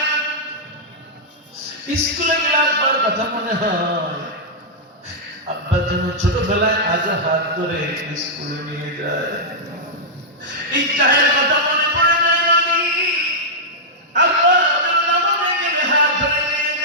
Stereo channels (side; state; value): both; normal; correlation -0.09